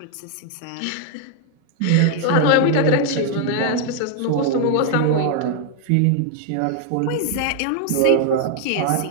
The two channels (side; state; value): both; different; correlation 0.00